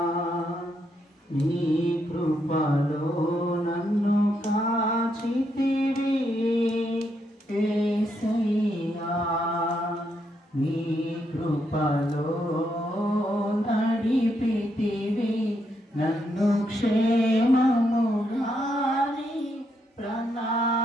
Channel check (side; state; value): both; normal; correlation 0.78